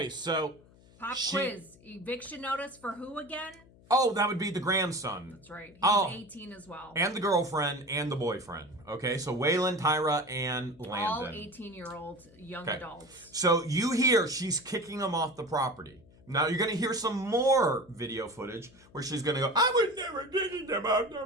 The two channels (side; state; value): left; noise; hum, 26 dB below the sound